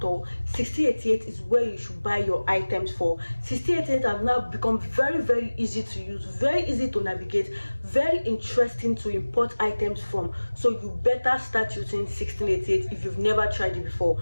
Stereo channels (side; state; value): both; inverted; correlation -1.00